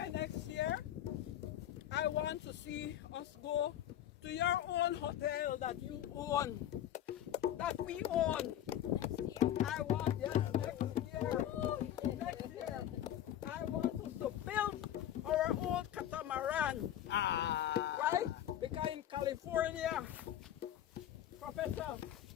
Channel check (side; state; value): right; quieter; 11.5 dB